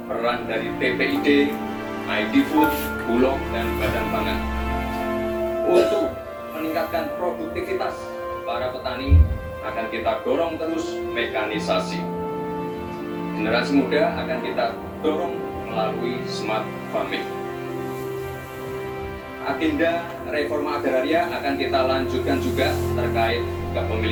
peran dari TPID, ID Food, Bulog, dan Badan Pangan. Untuk meningkatkan produktivitas para petani, akan kita dorong terus mekanisasi. Generasi muda akan kita dorong melalui smart farming. Agenda reforma agraria akan kita lanjutkan juga terkait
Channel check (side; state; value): both; identical; correlation 1.00